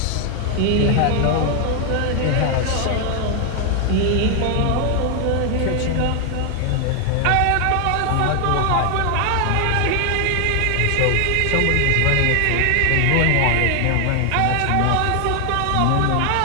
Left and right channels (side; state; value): both; different; correlation 0.00